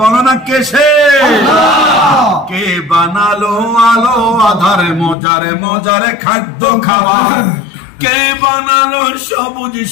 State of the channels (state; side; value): drops out; right; at 5.2 s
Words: না কে সে? কে বানালো আলো আধারে মজারে মজারে খাদ্য খাবার? কে বানালো সবুজ